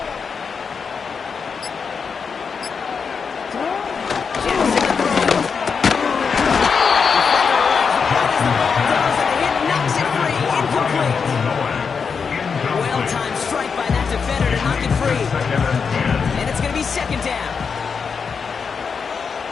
Well-timed strike by that defender to knock it free. And it's going to be 2nd down.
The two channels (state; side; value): quieter; right; 5.8 dB